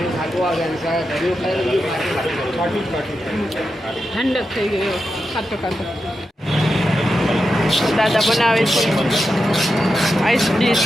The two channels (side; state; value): both; normal; correlation 0.89